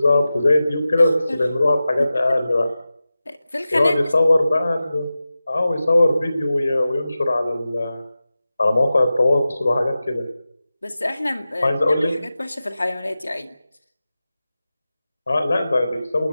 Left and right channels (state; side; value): inverted; both; correlation -0.94